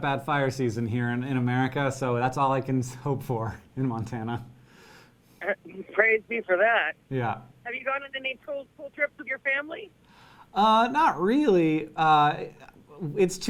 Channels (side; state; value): both; identical; correlation 1.00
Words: fire season here in America, so that's all I can hope for in Montana. Praise be for that. Yeah. Have you gone on any cool trips with your family? Not really. It's